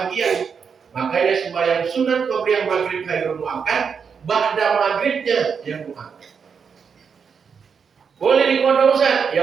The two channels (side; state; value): left; quieter; 6.3 dB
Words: Makanya sembahyang sunat kemudian maghrib hayrul muakkad. Ba'da maghribnya yang muakkad. Boleh dipotong Ustaz?